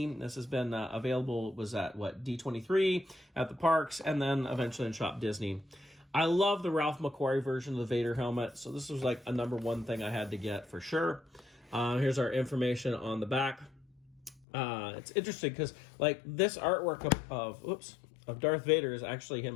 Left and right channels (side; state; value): right; drops out; at 14.5 s